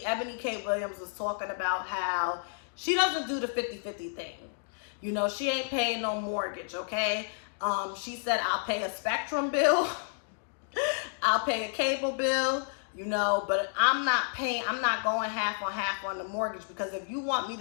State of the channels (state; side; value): silent; right; digital silence